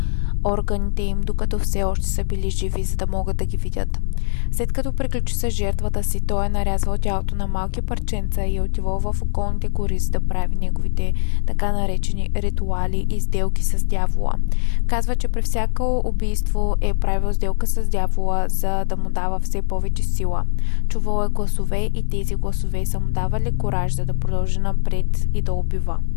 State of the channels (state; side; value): silent; right; digital silence